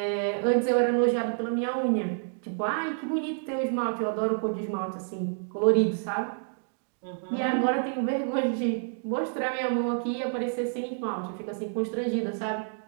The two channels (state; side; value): silent; left; digital silence